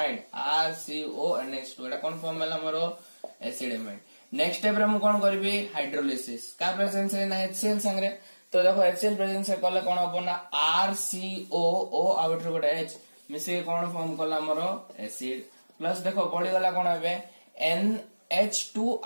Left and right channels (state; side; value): inverted; both; correlation -1.00